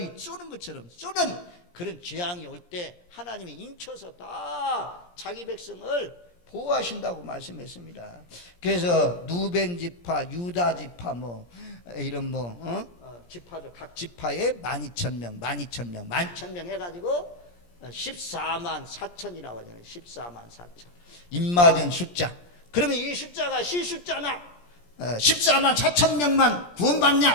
쏘는 것처럼 쏘는 그런 재앙이 올 때 하나님이 인쳐서 다 자기 백성을 보호하신다고 말씀했습니다. 그래서 누벤 지파, 유다 지파 이런 지파들 각 지파에 12,000명 해가지고 14만 4천이라고 하잖아요. 14만 4천 입맞은 숫자. 그러면 이 숫자가 실숫자나 14만 4천 명만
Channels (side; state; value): right; late; 17 ms